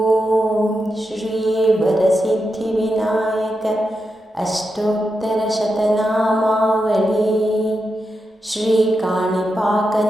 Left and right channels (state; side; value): normal; both; correlation 0.87